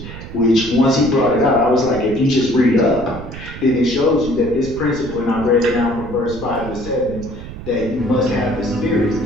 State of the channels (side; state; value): right; noise; rumble, 12 dB below the sound